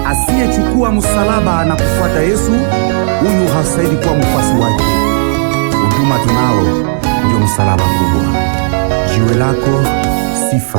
asiyechukua msalaba na kufuata Yesu, huyu hastahili kuwa mfuasi wake. Huduma tunao ndio msalaba kubwa. Jiwe lako Sifa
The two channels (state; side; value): silent; left; digital silence